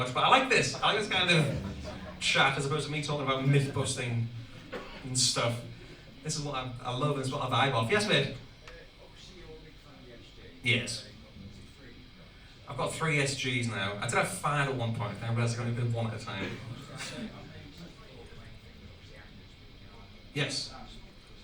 but I like this. I like this kind of chat as opposed to me talking about myth busting and stuff. This is what I love, and it's what I vibe off. Yes, mate? Yes. I've got 3 SGs now. I did have 5 at one point, I realised I only did 1 at a time. Yes.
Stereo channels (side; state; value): both; identical; correlation 1.00